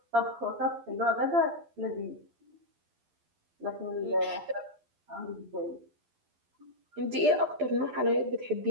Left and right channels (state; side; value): late; left; 12 ms